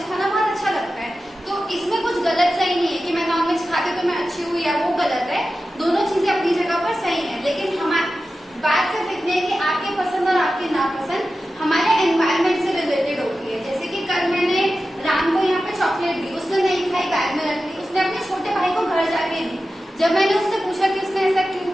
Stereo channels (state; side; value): normal; both; correlation 0.93